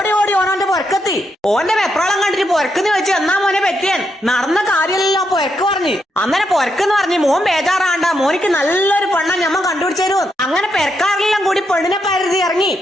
ഓനോന്റെ പൊരക്കെത്തി. ഓന്റെ വെപ്രാളം കണ്ടിട്ട് പൊരക്കെന്ന് വെച്ച് എന്നാ മോനെ പറ്റിയാൻ നടന്ന കാര്യമല്ലോ പൊരക്ക് പറഞ്ഞു. അന്നേരം പൊരക്കെന്ന് പറഞ്ഞ് മോൻ ബേജാറാണ്ട, മോനിക്ക് നല്ലൊരു പെണ്ണ ഞമ്മ കണ്ടുപിടിച്ചു. അങ്ങനെ പെരക്കാരെല്ലാം കൂടി പെണ്ണിനെ പരുതി ഇറങ്ങി.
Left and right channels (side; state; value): both; normal; correlation 0.81